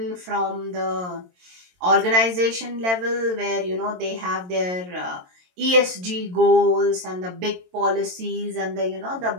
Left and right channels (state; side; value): late; left; 22 ms